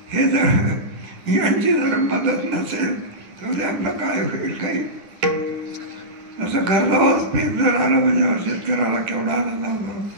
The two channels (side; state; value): left; late; 10 ms